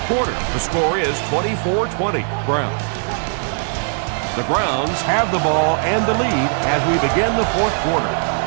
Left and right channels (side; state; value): left; silent; digital silence